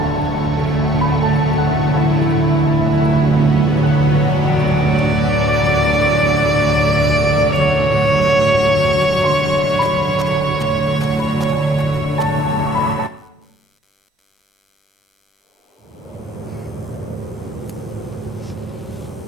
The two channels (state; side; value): normal; both; correlation 0.59